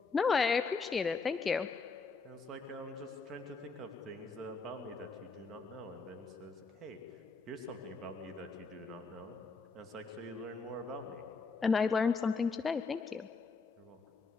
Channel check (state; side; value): quieter; right; 4.5 dB